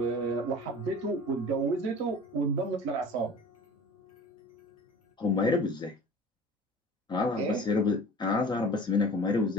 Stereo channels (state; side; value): normal; both; correlation 0.41